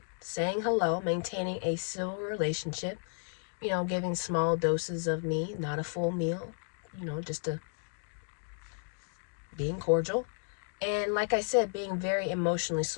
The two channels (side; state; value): right; silent; 56 dB below the other